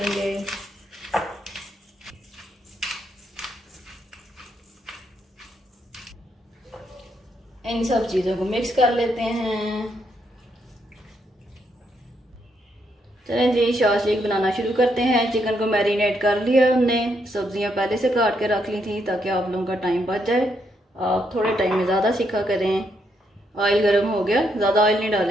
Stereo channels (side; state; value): both; normal; correlation 0.77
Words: इन सब चीज़ों को मिक्स कर लेते हैं। चलें जी, शाशलिक बनाना शुरू करते हैं। चिकन को मैरिनेट कर लिया हमने। सब्जियां पहले से काट के रख ली थी ताकि आप लोगों का टाइम बच जाए, आप थोड़े टाइम में ज़्यादा सीखा करें। ऑयल गर्म हो गया, ज़्यादा ऑयल नहीं